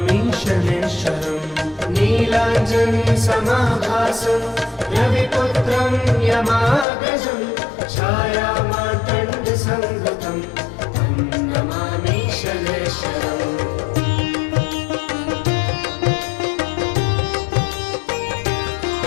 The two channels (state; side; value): drops out; right; at 6.9 s